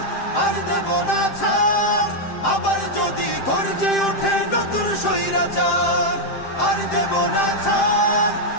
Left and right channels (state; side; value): late; right; 7.6 ms